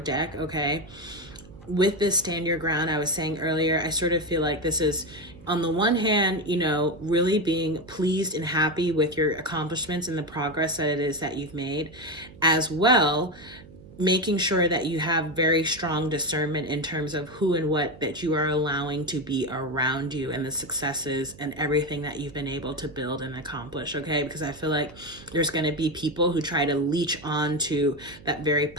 deck, okay? With this stand your ground, I was saying earlier, I sort of feel like this is, on the one hand, really being pleased and happy with your accomplishments and the progress that it is that you've made, as well making sure that you have very strong discernment in terms of who and what that you are allowing to be around you, and the successes and everything that you've been able to build and accomplish, okay? Because I feel like there's going to be people who try to leech on to that very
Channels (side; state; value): right; noise; hum, 20 dB below the sound